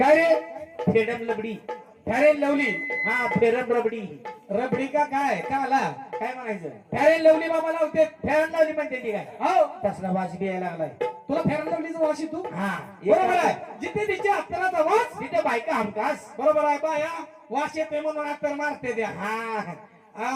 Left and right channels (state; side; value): identical; both; correlation 1.00